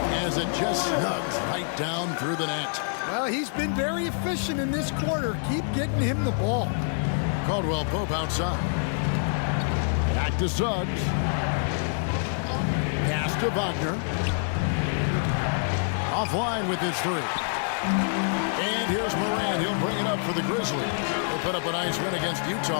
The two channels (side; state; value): right; silent; digital silence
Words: as it just snugs right down through the net. Well, he's been very efficient in this quarter. Keep getting him the ball. Caldwell Pope outside. Back to Suggs. Pass to Wagner. Offline with his three. And here's Morant. He'll bring it up for the Grizzlies. They put up a nice win against